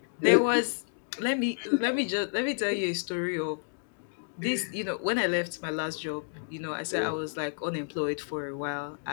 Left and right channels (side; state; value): right; silent; digital silence